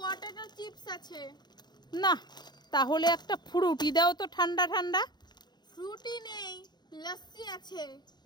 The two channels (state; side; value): late; right; 0.21 ms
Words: চিপস আছে। না, তাহলে একটা ফ্রুটি দাও তো, ঠান্ডা ঠান্ডা। ফ্রুটি নেই, লস্যি আছে।